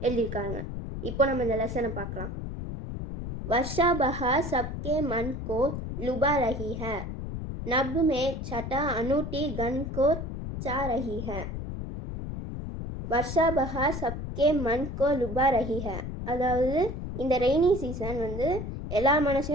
எழுதியிருக்காங்க. இப்போ நம்ம இந்த லெசனை பார்க்கலாம். वर्षा बहार सबके मन को लुभा रही है, नभ में छटा अनूठी गन को चा रही है. वर्षा बहार सबके मन को लुभा रही है. அதாவது இந்த ரெய்னி சீசன் எல்லா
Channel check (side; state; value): left; noise; rumble, 6 dB below the sound